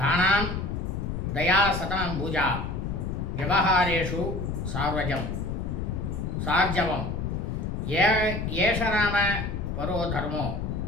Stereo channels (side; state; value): left; noise; rumble, 3 dB below the sound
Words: தயா சதம் பூஜா விவகாரேஷு சார்ஜவம் ஏஷராம பரோ தர்மோ